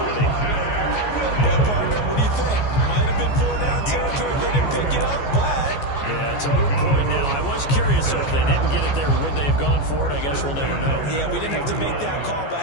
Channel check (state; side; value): late; right; 14 ms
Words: partner, what do you think? Might have been 4-down territory if they didn't pick it up, but... Yeah, it's a moot point now. I was curious, so if they didn't get it there, would they have gone for it? I guess we'll never know. Yeah, we didn't have to make that call, but I